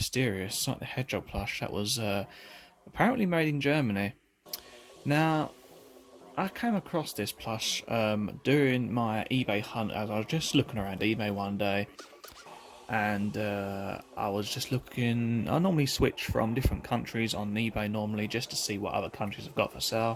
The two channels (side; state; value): both; identical; correlation 1.00